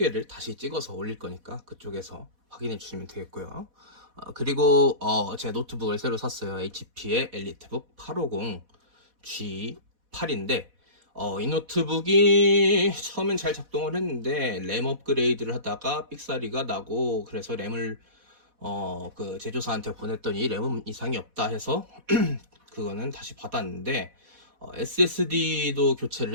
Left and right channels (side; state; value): left; late; 4.1 ms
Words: 다시 찍어서 올릴 거니까 그쪽에서 확인해 주시면 되겠고요. 그리고 제 노트북을 새로 샀어요. HP의 엘리트북 850 G8인데 이 노트북이 처음엔 잘 작동을 했는데 램 업그레이드를 하다가 삑사리가 나고, 그래서 램을 그 제조사한테 보냈더니 램은 이상이 없다 해서 그거는 다시 받았는데, SSD도